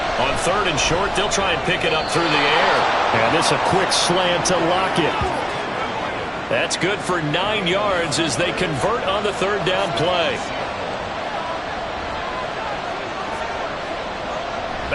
On 3rd and short, they'll try and pick it up through the air. And this a quick slant to Lockett. That's good for 9 yards as they convert on the 3rd down play.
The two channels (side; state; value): both; identical; correlation 1.00